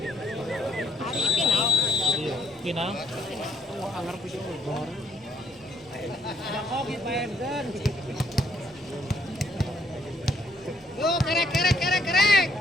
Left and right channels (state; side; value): normal; both; correlation 0.70